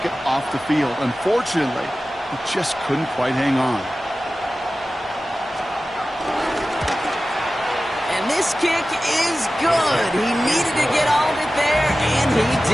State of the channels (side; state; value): both; normal; correlation 0.95